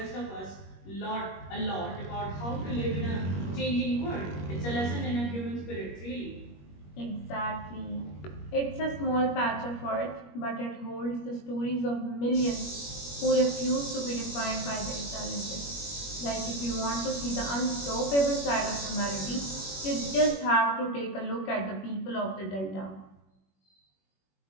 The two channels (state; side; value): late; right; 21 ms